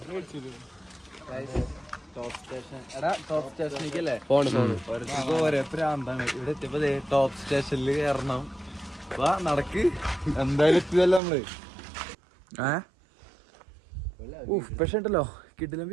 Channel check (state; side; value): drops out; left; at 11.2 s